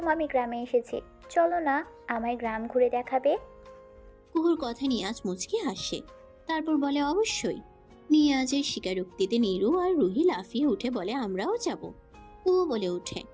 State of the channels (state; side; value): identical; both; correlation 1.00